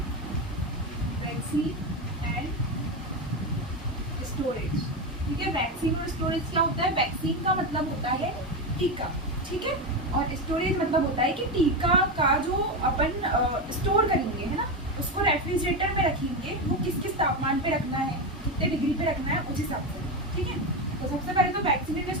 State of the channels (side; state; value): both; normal; correlation 0.14